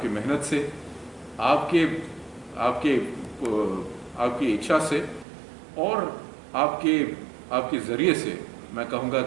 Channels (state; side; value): drops out; left; at 5.2 s